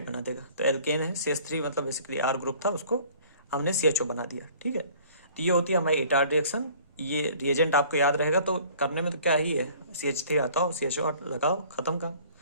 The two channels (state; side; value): inverted; both; correlation -0.52